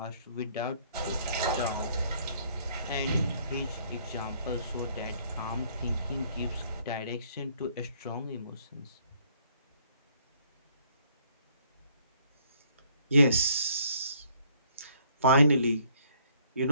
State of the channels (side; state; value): both; inverted; correlation -0.64